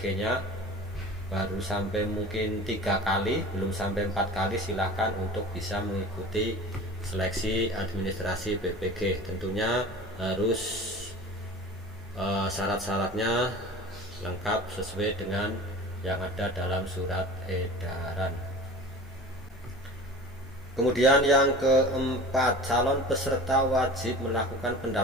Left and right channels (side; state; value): both; normal; correlation 0.39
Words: nya baru sampai mungkin 3 kali, belum sampai 4 kali, silahkan untuk bisa mengikuti seleksi administrasi PPG. Tentunya harus syarat-syaratnya lengkap sesuai dengan yang ada dalam surat edaran. Kemudian yang keempat, calon peserta wajib melakukan